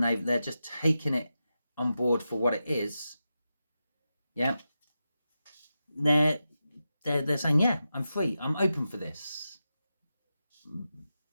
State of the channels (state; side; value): inverted; both; correlation -0.90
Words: they're just taking it on board for what it is, yeah, they're saying, yeah, I'm free. I'm open for this.